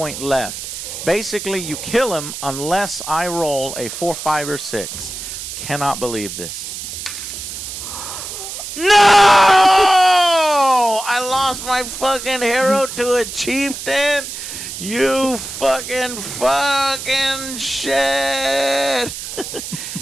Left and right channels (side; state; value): right; noise; hiss, 8 dB below the sound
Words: left. Basically, you kill him unless I roll a 4, 5, or 6. Cannot believe this. No! I lost my fucking hero to a chieftain. You fucking shit.